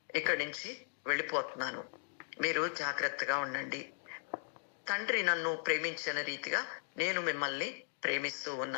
ఇక్కడి నుంచి వెళ్ళిపోతున్నాను, మీరు జాగ్రత్తగా ఉండండి. తండ్రి నన్ను ప్రేమించిన రీతిగా నేను మిమ్మల్ని ప్రేమిస్తూ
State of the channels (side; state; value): right; silent; digital silence